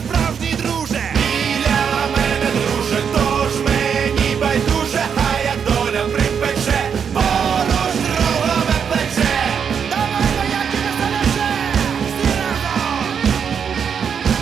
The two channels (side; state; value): left; quieter; 7.1 dB